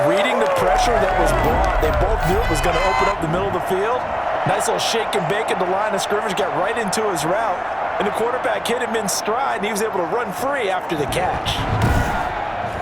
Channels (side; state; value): both; identical; correlation 1.00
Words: reading the pressure that was brought. They both knew it was going to open up the middle of the field. Nice little shake and bake at the line of scrimmage. Got right into his route. And the quarterback hit him in stride, and he was able to run free after the catch.